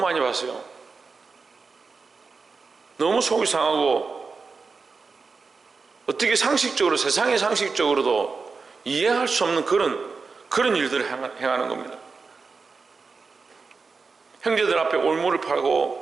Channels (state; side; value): quieter; left; 4.6 dB